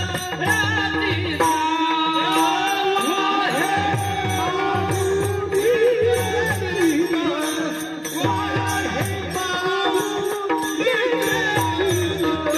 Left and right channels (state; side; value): identical; both; correlation 1.00